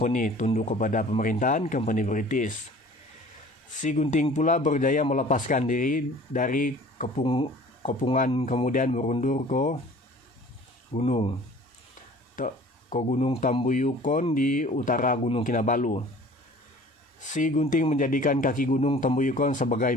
tunduk kepada pemerintahan company British. Si Gunting pula berjaya melepaskan diri dari kepungan kemudian berundur ke Gunung Tambuyukon di utara Gunung Kinabalu. Si Gunting menjadikan kaki Gunung Tambuyukon sebagai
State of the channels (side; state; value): both; normal; correlation 0.48